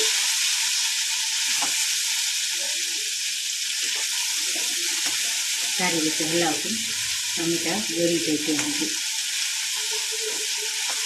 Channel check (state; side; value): identical; both; correlation 1.00